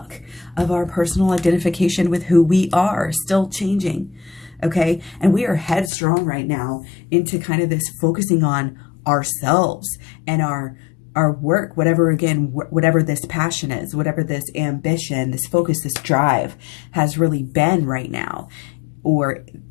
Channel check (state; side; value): drops out; right; at 5.9 s